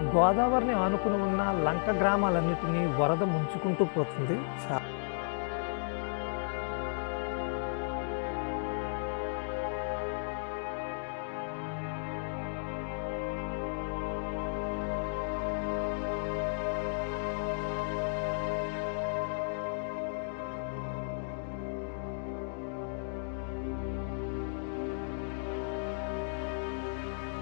గోదావరిని ఆనుకుని ఉన్న లంక గ్రామాలన్నిటినీ వరద ముంచుకుంటూ పోతుంది.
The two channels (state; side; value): silent; right; digital silence